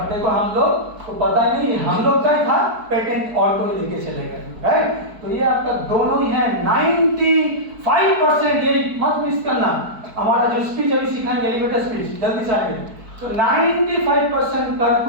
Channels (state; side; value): late; left; 4.6 ms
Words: देखो हम लोग को पता ही नहीं, हम लोग का ही था, पेटेंट और कोई लेके चले गए, राइट। तो ये आपका दोनों ही है 95%। ये मत मिस करना, हमारा जो स्पीच अभी सीखाएंगे एलिवेटर स्पीच, जल्दी से आएंगे। तो 95%